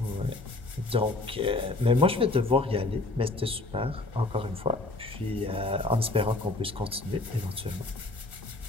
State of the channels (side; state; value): right; quieter; 3.0 dB